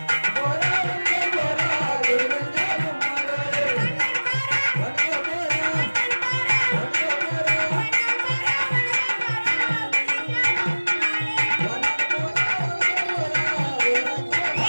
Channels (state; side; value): inverted; both; correlation -1.00